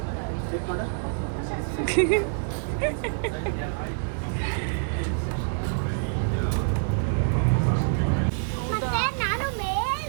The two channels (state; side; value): silent; left; digital silence